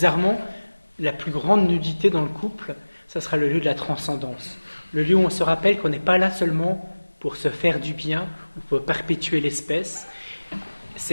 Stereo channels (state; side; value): inverted; both; correlation -1.00